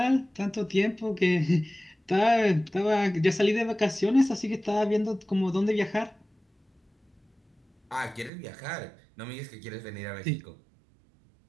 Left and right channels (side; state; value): left; drops out; at 8.3 s